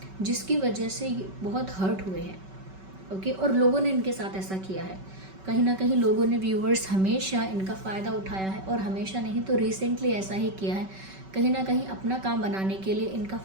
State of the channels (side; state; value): left; late; 5.3 ms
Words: जिसकी वजह से बहुत हर्ट हुए हैं, ओके। और लोगों ने इनके साथ ऐसा किया है, कहीं ना कहीं लोगों ने, व्यूअर्स, हमेशा इनका फ़ायदा उठाया है, और हमेशा नहीं तो रिसेंटली ऐसा ही किया है, कहीं ना कहीं अपना काम बनाने के लिए इनका